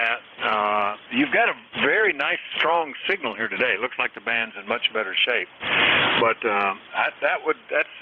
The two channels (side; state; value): both; identical; correlation 1.00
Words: You've got a very nice, strong signal here today. It looks like the band's in much better shape. But that's